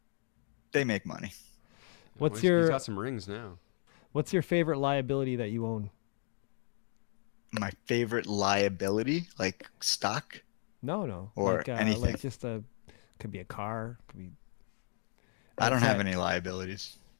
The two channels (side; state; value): right; silent; 55 dB below the other